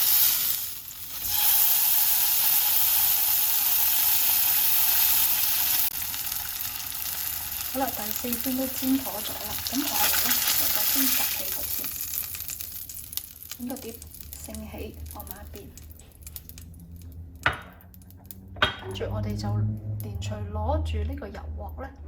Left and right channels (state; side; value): identical; both; correlation 1.00